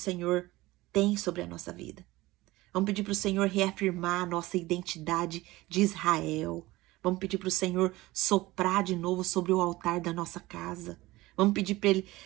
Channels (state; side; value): quieter; left; 19.1 dB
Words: tem sobre a nossa vida. Vamos pedir para o Senhor reafirmar a nossa identidade de Israel. Vamos pedir para o Senhor soprar de novo sobre o altar da nossa casa. Vamos pedir para Ele